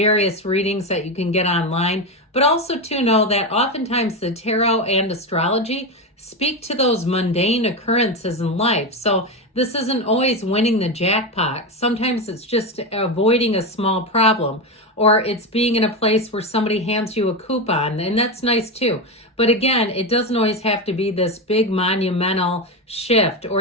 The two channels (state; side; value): normal; both; correlation 0.14